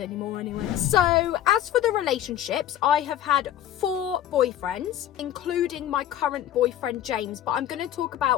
anyway. So as for the relationships, I have had 4 boyfriends, including my current boyfriend James, but I'm going to talk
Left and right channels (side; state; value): right; quieter; 11.5 dB